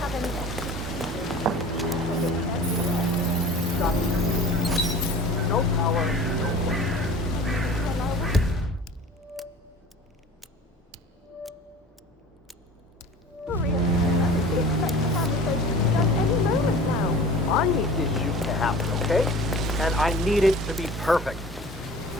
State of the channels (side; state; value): both; normal; correlation 0.42